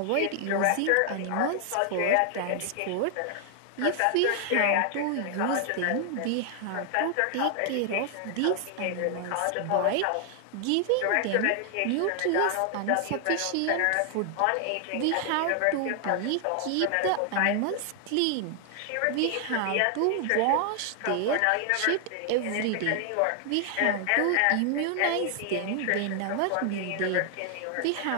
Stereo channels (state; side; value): different; both; correlation 0.00